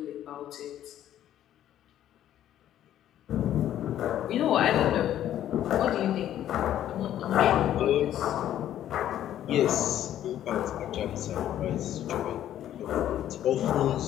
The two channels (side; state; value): right; quieter; 11.6 dB